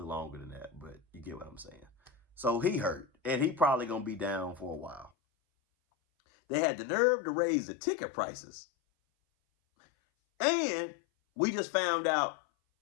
longer than that, but you get what I'm saying. So he hurt, and he probably going to be down for a while. They had the nerve to raise the ticket prices. And we just found out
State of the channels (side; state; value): right; drops out; at 5.1 s